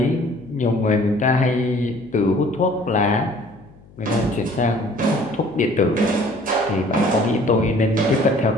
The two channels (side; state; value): left; noise; hum, 25 dB below the sound